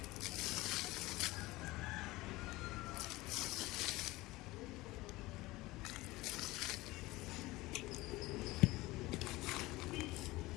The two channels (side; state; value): right; quieter; 19.9 dB